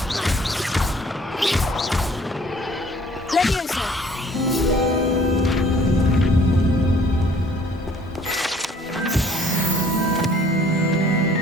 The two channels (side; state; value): both; normal; correlation 0.57